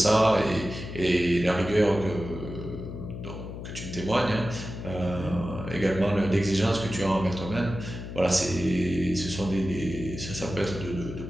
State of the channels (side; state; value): left; noise; hum, 9 dB below the sound